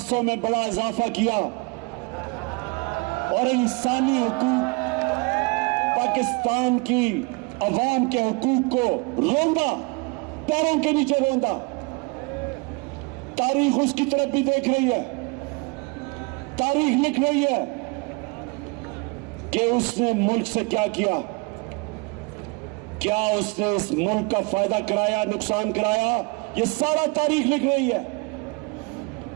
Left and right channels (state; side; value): quieter; left; 29.5 dB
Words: में बड़ा इजाफा किया और इंसानी हुकूक, पाकिस्तान की अवाम के हुकूक को रोंदा, पैरों के नीचे रोंदा। तारीख उसकी तरफ भी देख रही है, तारीख लिख रही है कि उसने मुल्क से क्या किया, क्या उसने इस मुल्क का फायदा कराया, नुकसान कराया, ये सारा तारीख लिख रही है।